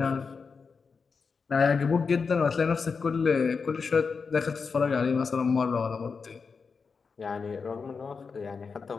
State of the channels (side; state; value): right; quieter; 5.2 dB